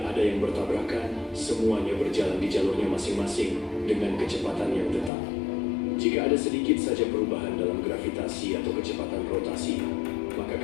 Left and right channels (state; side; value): drops out; right; at 5.1 s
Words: yang bertabrakan, semuanya berjalan di jalurnya masing-masing dengan kecepatan yang tetap. Jika ada sedikit saja perubahan dalam gravitasi atau kecepatan rotasi, maka